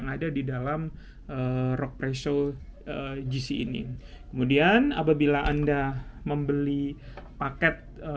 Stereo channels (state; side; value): identical; both; correlation 1.00